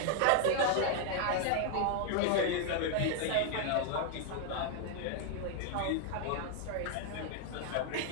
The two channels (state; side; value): different; both; correlation 0.00